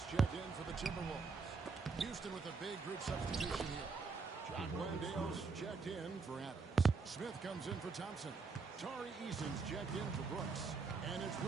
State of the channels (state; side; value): quieter; left; 4.6 dB